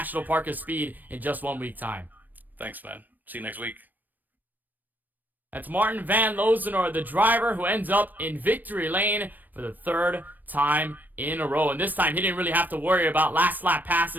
Park of Speed in just 1 week time. Thanks, man. See you next week. That's Martin van Loosenoord, the driver who ends up in victory lane for the 3rd time in a row. And this time, he didn't really have to worry about last lap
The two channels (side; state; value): left; late; 0.088 ms